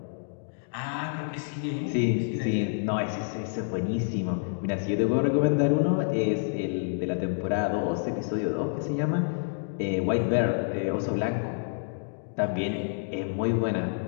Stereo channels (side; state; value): right; silent; digital silence